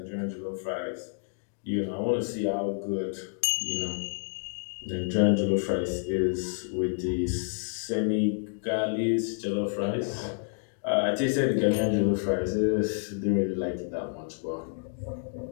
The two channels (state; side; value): silent; right; digital silence